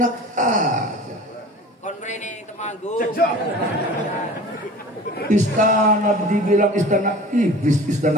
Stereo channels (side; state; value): both; normal; correlation 0.41